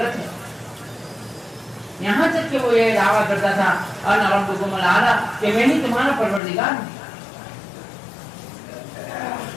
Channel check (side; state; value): right; drops out; at 6.4 s